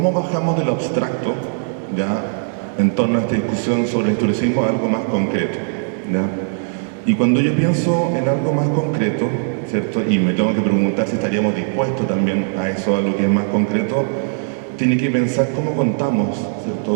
bajamos de lo abstracto, ¿ya?, en torno a esta discusión sobre el historicismo a algo más concreto, ¿ya? Y cuando yo pienso en algo más concreto, ¿cierto?, y me tengo que preguntar si estaríamos dispuestos también a eso, a lo que es más concreto, tiene que pensar cómo contamos,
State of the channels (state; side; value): silent; left; 66 dB below the other